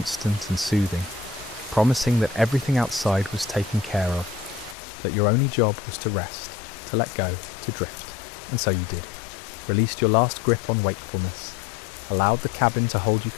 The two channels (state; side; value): drops out; right; at 4.8 s